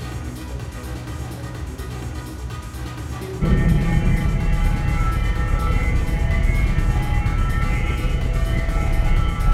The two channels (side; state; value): both; identical; correlation 1.00